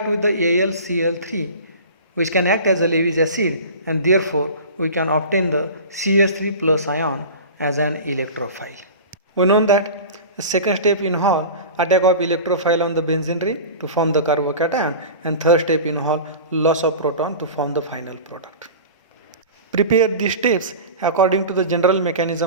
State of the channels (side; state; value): both; inverted; correlation -0.35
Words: with the AlCl3 which can act as a Lewis acid and therefore we can obtain the CS3 plus ion as an electrophile. We know that the second step involves attack of electrophile on the benzene ring to form the carbocation and third step involves loss of proton to form the final product. Prepare these steps according to the general